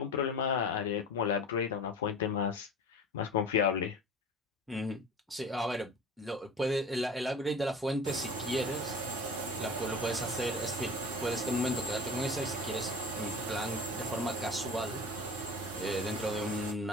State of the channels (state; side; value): normal; both; correlation 0.37